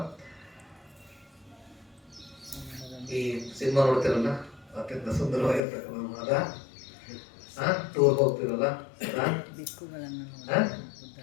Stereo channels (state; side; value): drops out; right; at 5.6 s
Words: ಈ ಸಿನಿಮಾ ನೋಡ್ತಿರಲ್ಲ, ಅತ್ಯಂತ ಸುಂದರವಾಗಿರ್ತಕ್ಕಂಥ ಅದ ಟೂರ್ ಹೋಗ್ತಿರಲ್ಲ,